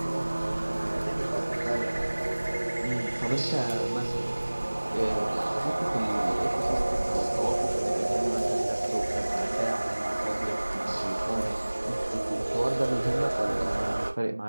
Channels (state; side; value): inverted; both; correlation -1.00